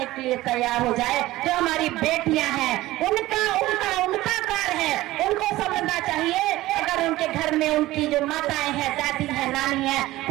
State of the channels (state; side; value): quieter; left; 17.2 dB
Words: के लिए तैयार हो जाए। जो हमारी बेटियां हैं, उनका कार है, उनको समझना चाहिए। अगर उनके घर में उनकी जो माताएं हैं, दादी हैं, नानी हैं,